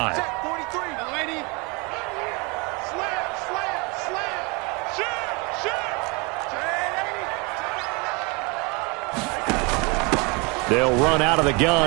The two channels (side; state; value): left; quieter; 29.5 dB